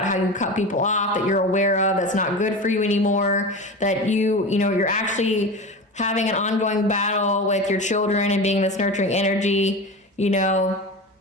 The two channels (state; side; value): normal; both; correlation 0.28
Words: how you cut people off that you're aware of, that's not good for you anymore, that you know, you're actually having an ongoing battle with your children and being this nurturing energy, you know,